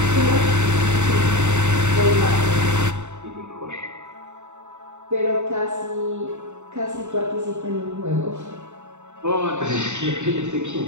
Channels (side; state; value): left; late; 0.84 ms